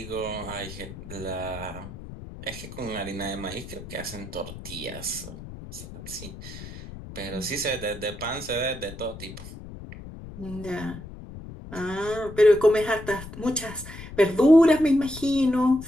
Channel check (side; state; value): left; noise; rumble, 13 dB below the sound